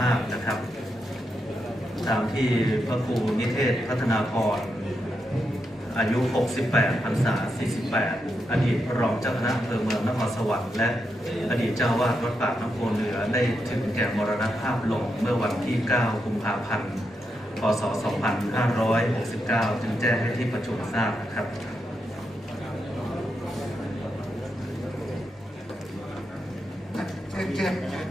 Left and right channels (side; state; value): both; normal; correlation 0.84